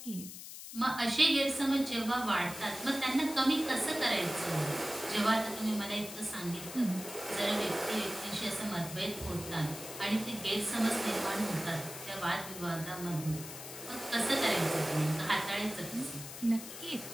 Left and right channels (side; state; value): left; noise; hiss, 11 dB below the sound